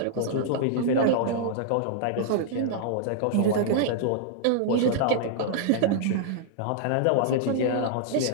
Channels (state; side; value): different; both; correlation -0.01